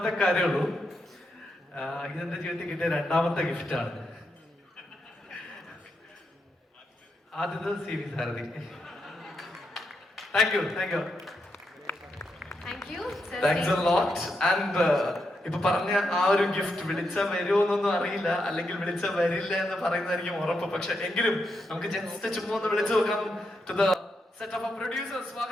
കാര്യമുള്ളൂ, ഇതെൻ്റെ ജീവിതത്തിൽ കിട്ടിയ രണ്ടാമത്തെ ഗിഫ്റ്റാണ്. ആദ്യത്തെ CV Sarathi. Thank you. Thank you, sir. Thanks a lot. And ഇപ്പൊ പറഞ്ഞ ആ ഒരു ഗിഫ്റ്റ് വിളിച്ചാൽ വരുമോ എന്നൊന്നും അറിയില്ല, അല്ലെങ്കിൽ വിളിച്ചാൽ വരില്ല എന്ന് പറയുന്നതായിരിക്കും ഉറപ്പ്. പക്ഷെ എങ്കിലും നമുക്ക് ജസ്റ്റ് ചുമ്മാ ഒന്ന് വിളിച്ചു നോക്കാം. To the set of producers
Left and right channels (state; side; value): normal; both; correlation 0.83